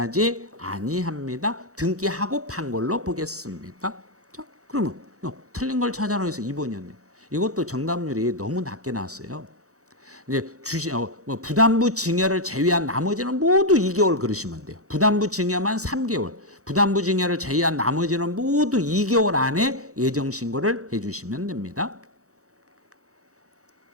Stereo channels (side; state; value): left; late; 0.65 ms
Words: 아니합니다. 등기하고 판 걸로 보겠습니다. 자, 그러면 틀린 걸 찾아라 해서 2번이었네요. 이것도 정답률이 너무 낮게 나왔어요. 이제 부담부 증여를 제외한 나머지는 모두 2개월 그러시면 돼요. 부담부 증여만 3개월. 부담부 증여를 제외한 나머지는 모두 2개월 안에 예정 신고를 해주시면 됩니다.